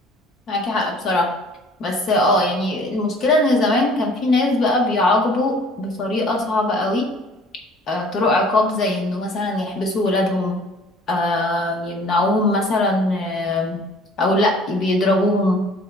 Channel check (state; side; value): normal; both; correlation 0.52